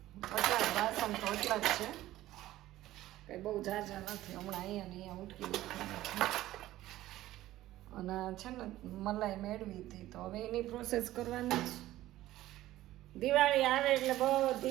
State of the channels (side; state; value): left; quieter; 15.2 dB